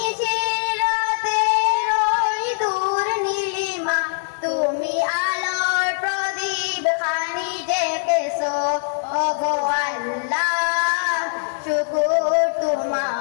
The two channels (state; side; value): silent; right; 56 dB below the other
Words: রাতের ওই দূর নীলিমা, তুমি আলোর প্রদীপ খানি ডেকেছো। ওগো আল্লাহ শুকুর